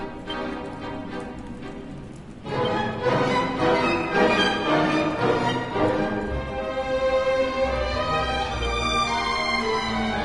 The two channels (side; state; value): both; identical; correlation 1.00